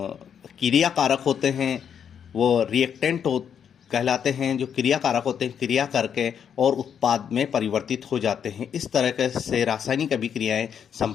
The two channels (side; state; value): right; quieter; 8.0 dB